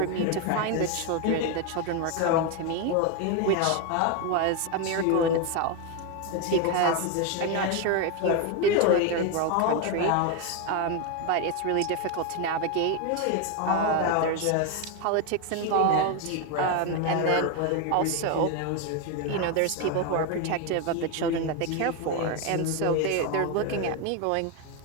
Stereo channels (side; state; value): both; different; correlation 0.02